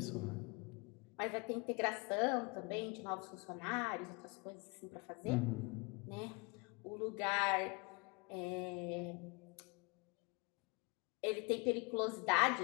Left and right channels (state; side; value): quieter; right; 30.0 dB